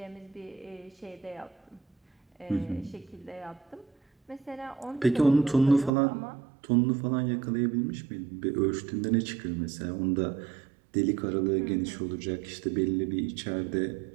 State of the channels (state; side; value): drops out; left; at 5.9 s